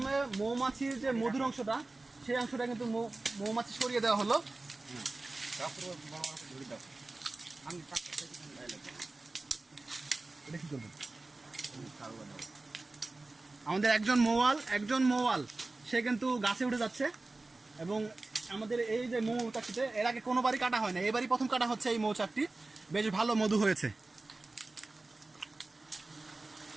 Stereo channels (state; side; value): quieter; left; 3.2 dB